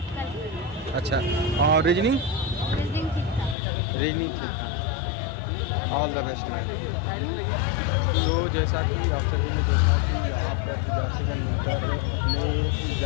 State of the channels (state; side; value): drops out; right; at 3.6 s